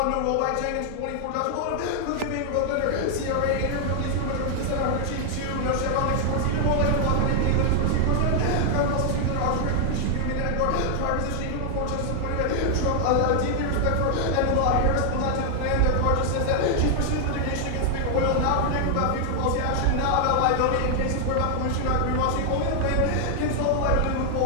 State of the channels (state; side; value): different; both; correlation 0.00